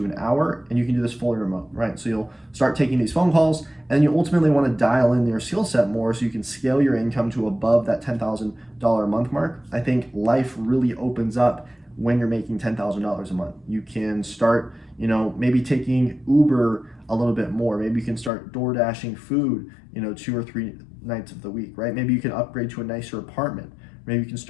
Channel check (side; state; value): right; drops out; at 18.3 s